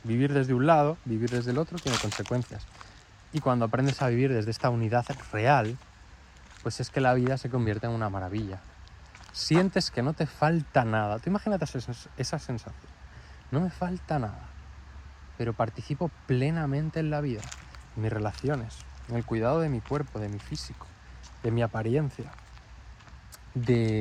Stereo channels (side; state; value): both; identical; correlation 1.00